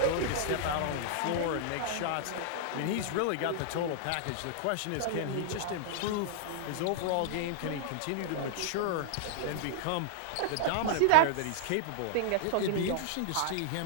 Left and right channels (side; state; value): both; different; correlation -0.01